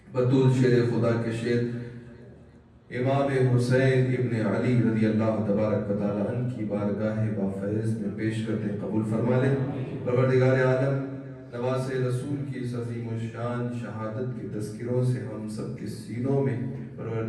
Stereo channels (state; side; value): identical; both; correlation 1.00